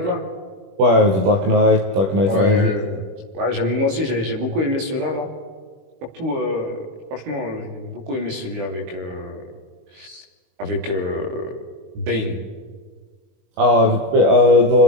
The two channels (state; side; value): late; left; 21 ms